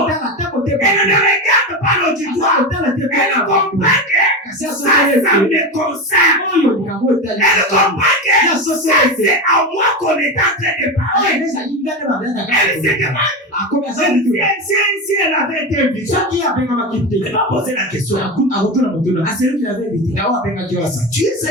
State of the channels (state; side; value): normal; both; correlation 0.20